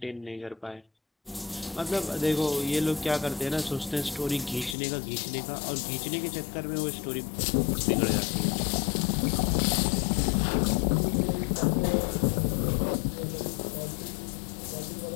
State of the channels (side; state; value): right; drops out; at 4.8 s